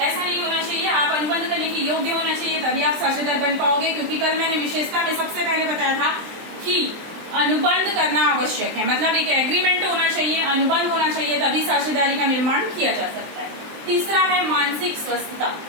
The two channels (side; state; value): left; late; 23 ms